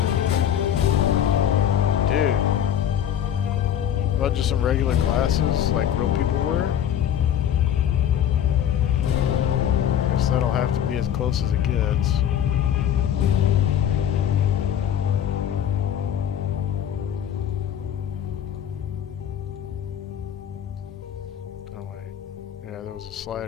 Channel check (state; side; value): quieter; right; 9.8 dB